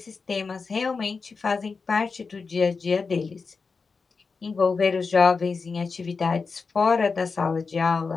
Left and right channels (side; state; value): right; quieter; 4.7 dB